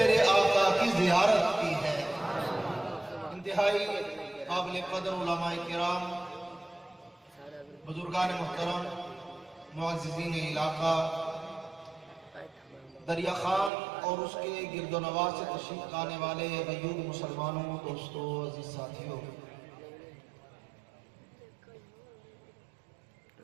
آقا کی زیارت کی ہے۔ انتہائی قابل قدر علماء کرام، بزرگان محترم، معززین علاقہ، دریا خان اور اس کے گرد و نواح سے تشریف لانے والے غیور مسلمانوں، دوستوں، عزیز ساتھیوں،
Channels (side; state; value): left; drops out; at 13.7 s